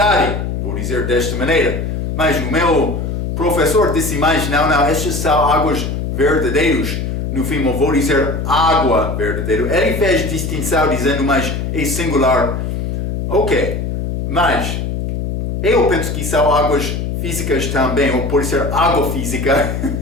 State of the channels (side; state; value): left; noise; hum, 3 dB below the sound